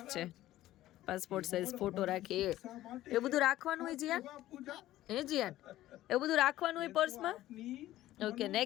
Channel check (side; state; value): right; quieter; 14.8 dB